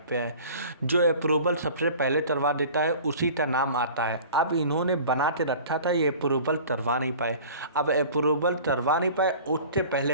पाए। जो अप्रूवल सबसे पहले करवा देता है उसी का नाम आता है। अब इन्होंने बना के रखा था, ये अप्रूवल करवा नहीं पाए। अब अप्रूवल करवा नहीं पाए, उससे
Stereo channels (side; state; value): both; inverted; correlation -0.43